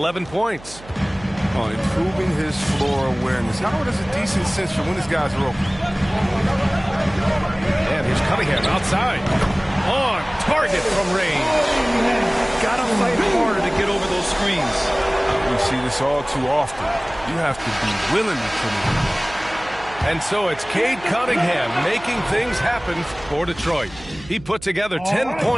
points. On improving his floor awareness. Howard has a decent sense for when his guys are open. And here's Cunningham outside. On target from range. Gotta fight harder to get over those screens. We see this all too often. You have to be willing to put it in. And so it's Cade Cunningham making things happen for Detroit. He put together 10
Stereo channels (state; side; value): noise; right; hum, 19 dB below the sound